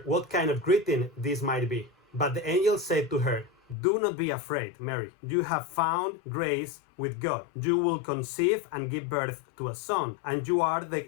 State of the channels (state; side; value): drops out; right; at 3.8 s